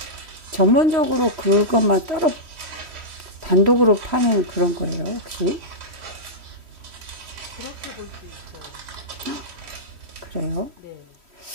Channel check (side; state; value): left; late; 3.1 ms